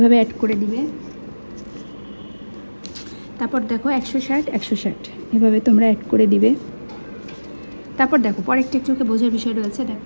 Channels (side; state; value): both; inverted; correlation -1.00